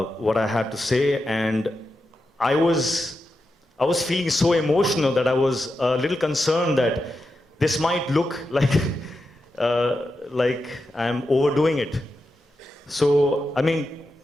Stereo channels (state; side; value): normal; both; correlation 0.88